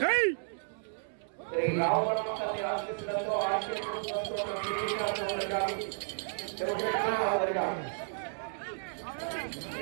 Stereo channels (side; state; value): left; silent; 56 dB below the other